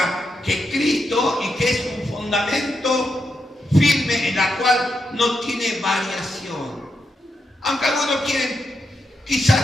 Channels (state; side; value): normal; both; correlation 0.84